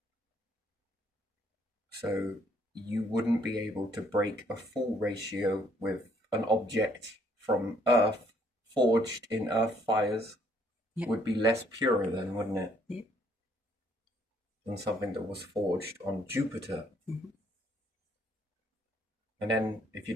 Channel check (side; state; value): both; normal; correlation 0.66